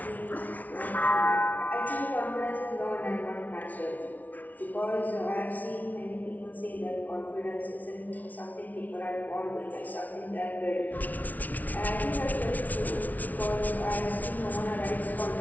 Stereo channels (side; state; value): right; late; 0.076 ms